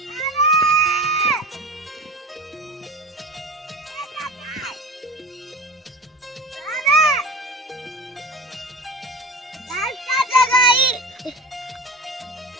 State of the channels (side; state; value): both; normal; correlation 0.31